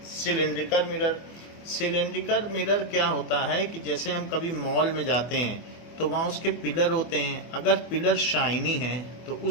सिलेंड्रिकल मिरर। सिलेंड्रिकल मिरर क्या होता है कि जैसे हम कभी मॉल में जाते हैं तो वहाँ उसके पिलर होते हैं, अगर पिलर शाइनी है तो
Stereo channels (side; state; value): right; late; 25 ms